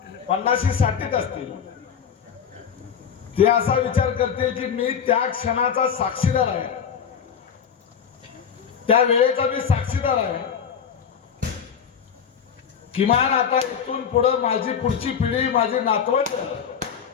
50-60 असतील, ते असा विचार करते की मी त्या क्षणाचा साक्षीदार आहे, त्या वेळेचा मी साक्षीदार आहे। किमान आता इथून पुढे माझी पुढची पिढी, माझी नातवंड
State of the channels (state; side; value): quieter; right; 7.4 dB